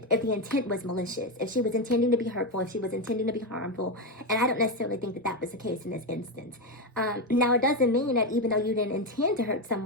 If the intent was malicious, if she was intending to be hurtful, if she was intending to be harmful, and I don't necessarily think that that was the case in this instance. Now, it doesn't mean that even though you didn't intend to hurt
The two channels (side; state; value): both; normal; correlation 0.10